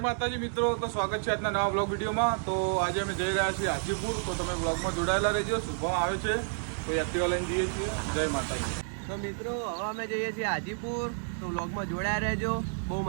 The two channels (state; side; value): silent; left; 58 dB below the other